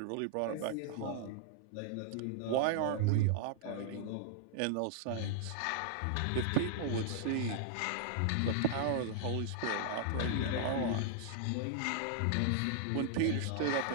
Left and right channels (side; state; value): both; different; correlation -0.01